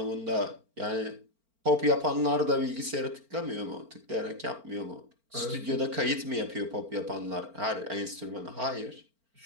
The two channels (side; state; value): left; late; 4.4 ms